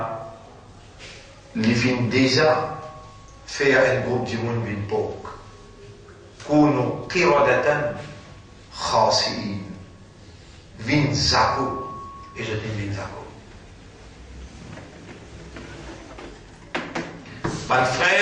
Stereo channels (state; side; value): identical; both; correlation 1.00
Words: il vient déjà faire un groupe du monde d'une époque. كونوا قردة خاسئين vin zako et je dis vin zako. Mon